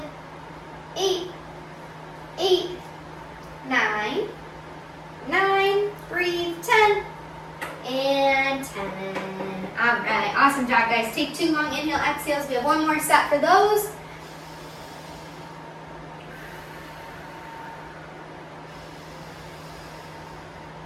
8, 8, 9, 9, breathe, 10, and 10. All right, awesome job, guys. Take 2 long inhale, exhales. We have one more set for those.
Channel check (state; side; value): identical; both; correlation 1.00